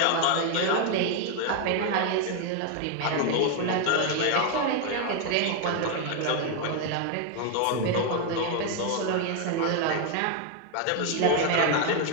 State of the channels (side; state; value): both; different; correlation 0.01